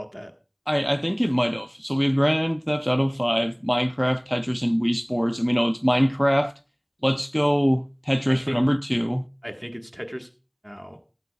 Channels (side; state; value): both; identical; correlation 1.00